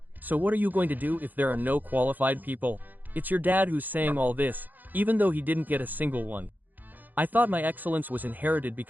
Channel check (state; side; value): late; left; 0.085 ms